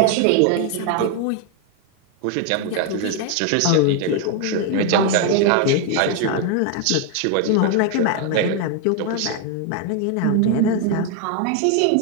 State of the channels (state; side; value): different; both; correlation 0.00